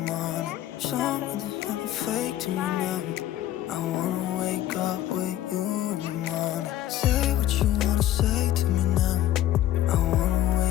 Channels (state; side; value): quieter; right; 13.2 dB